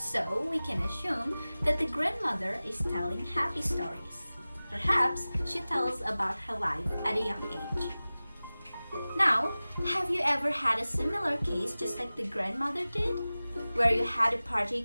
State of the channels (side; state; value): both; inverted; correlation -0.98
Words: we can assume that the grandmother is telling happy stories. Perhaps she tells about her life at a young age. Now, have you ever had a similar case just like the grandmother did? Where you had a